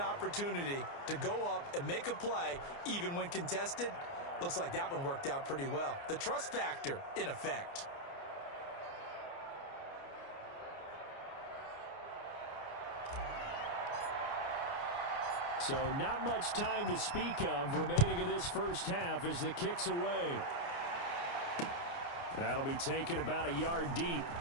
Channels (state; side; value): late; right; 29 ms